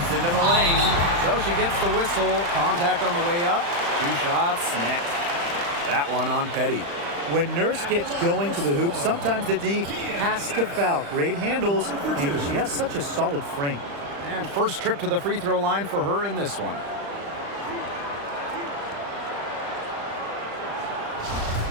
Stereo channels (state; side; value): late; left; 35 ms